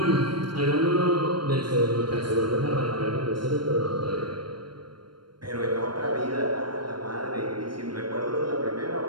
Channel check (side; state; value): left; late; 0.72 ms